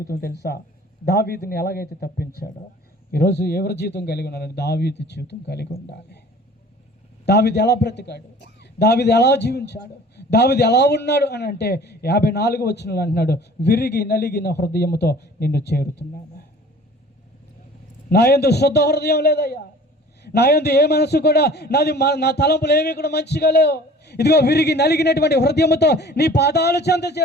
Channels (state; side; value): normal; both; correlation 0.47